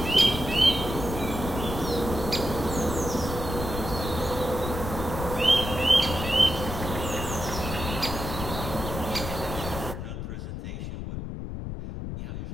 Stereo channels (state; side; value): noise; left; rumble, 6 dB below the sound